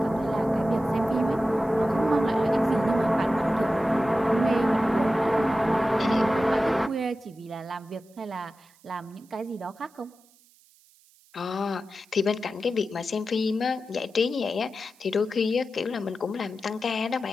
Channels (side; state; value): right; noise; hiss, 30 dB below the sound